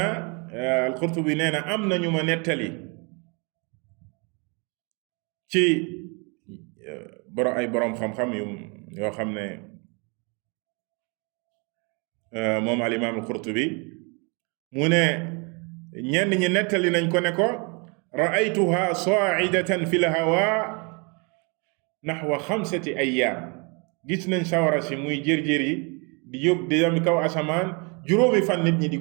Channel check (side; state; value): left; quieter; 32.6 dB